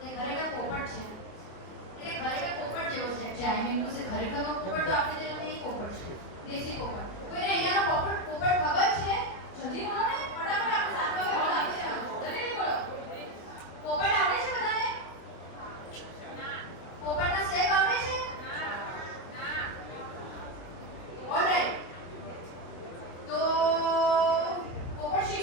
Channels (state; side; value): late; right; 24 ms